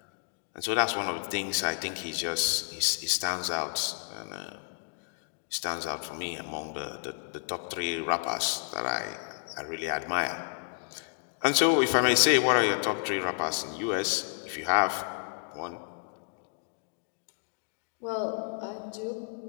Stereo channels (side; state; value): right; silent; digital silence